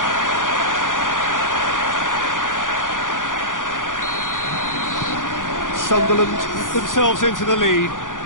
Sunderland put themselves into the lead.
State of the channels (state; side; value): late; right; 0.88 ms